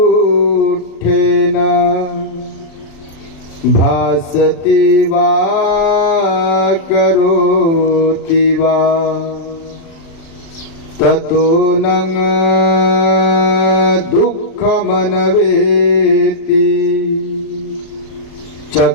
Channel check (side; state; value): right; late; 36 ms